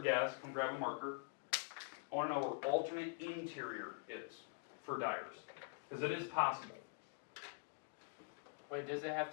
guess, come grab a marker. I want to know where alternate interior is for Dyers. Because it is possible. Wait, does it have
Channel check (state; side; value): quieter; right; 34.9 dB